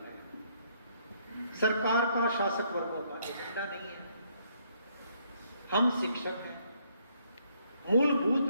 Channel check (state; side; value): inverted; both; correlation -0.69